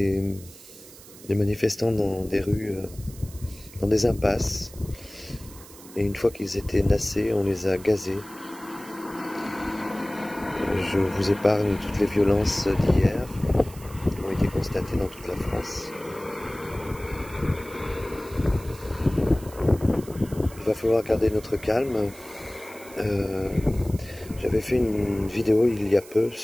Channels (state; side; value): noise; right; hiss, 19 dB below the sound